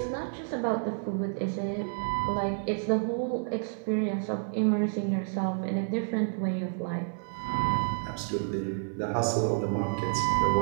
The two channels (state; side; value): silent; left; 56 dB below the other